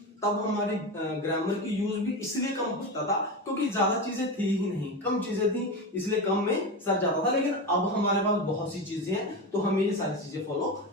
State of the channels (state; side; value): normal; both; correlation 0.20